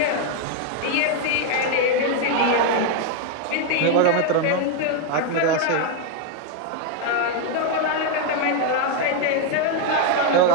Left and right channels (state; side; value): different; both; correlation 0.01